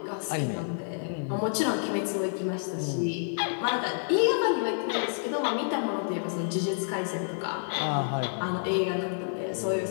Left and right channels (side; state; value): right; silent; digital silence